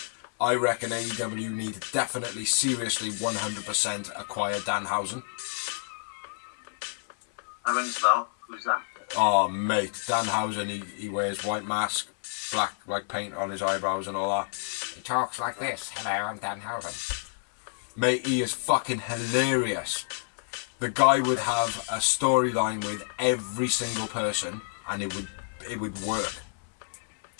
I reckon AEW need to definitely, seriously, 100% acquire Danhausen. That rings a bell. Who's that? Oh, mate, Danhausen, he wears white mask, black like paint on his eyebrows and all that. He talks like this. Hello, I'm Danhausen. Mate, he is fucking hilarious. The guy would have a storyline with every single person, and it would work.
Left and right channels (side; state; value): right; silent; 59 dB below the other